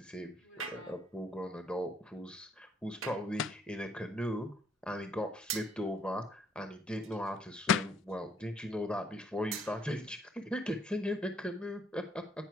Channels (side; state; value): both; normal; correlation 0.66